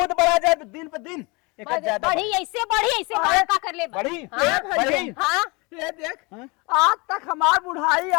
बड़ा जाए दिन पे दिन एक ज्यादा बढ़ी ऐसे बड़ा का कर ले बढ़ी हाँ, बढ़ी हाँ। ये देख हाँ? आज तक हमार बुढ़ाई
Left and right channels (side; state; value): right; quieter; 27.6 dB